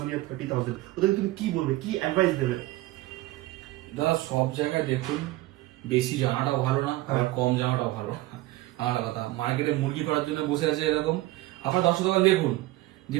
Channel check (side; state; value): left; quieter; 17.9 dB